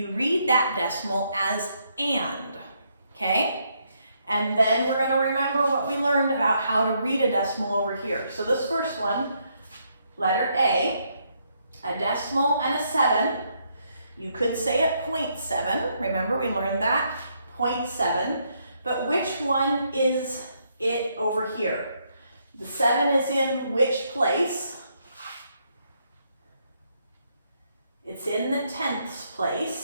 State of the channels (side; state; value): both; inverted; correlation -0.75